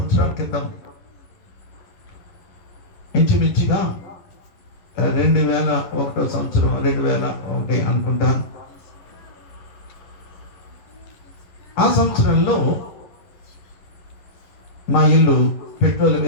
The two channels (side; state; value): right; late; 11 ms